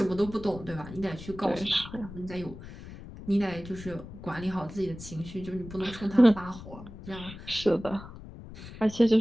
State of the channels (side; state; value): left; noise; rumble, 14 dB below the sound